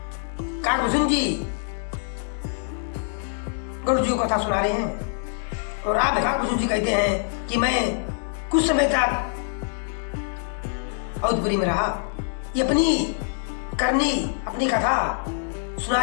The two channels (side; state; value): right; silent; digital silence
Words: काकभूषण जी गरुड़ जी को कथा सुना रहे हैं। और आप काकभूषण जी कहते हैं कि मैं कुछ समय तक अवधपुरी में रहा। ये अपनी करनी, अपनी कथा